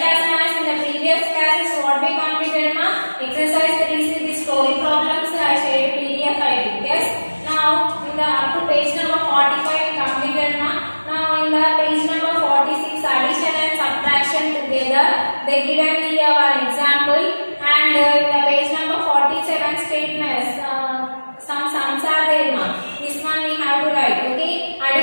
maths. In the previous classes, what we completed, ma? Exercise 3 the story problems. I shared PDF file. Yes. Now in the up to page number 45 we completed, ma. Now in the page number 46, addition and subtraction together. They given the example, and in the page number 47 statements. Some sums are there, ma. This one we have to write. Okay.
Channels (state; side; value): inverted; both; correlation -1.00